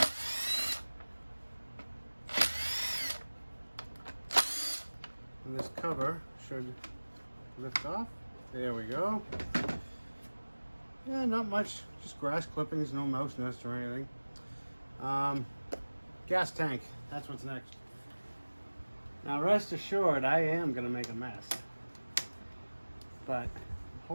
And this cover should lift off. There we go. Yeah, not much. Just grass clippings, no mouse nest or anything. Gas tank. That's what's next. Now, rest assured, I am going to make a mess. But I'm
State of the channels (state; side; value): inverted; both; correlation -1.00